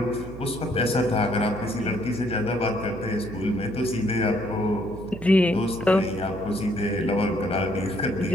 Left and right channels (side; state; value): right; noise; hum, 12 dB below the sound